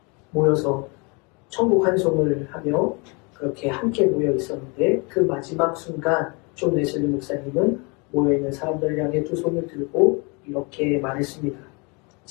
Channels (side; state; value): right; quieter; 30.8 dB